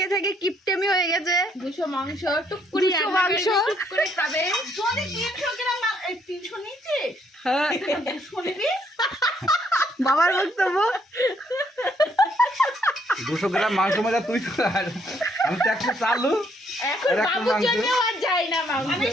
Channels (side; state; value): both; normal; correlation 0.70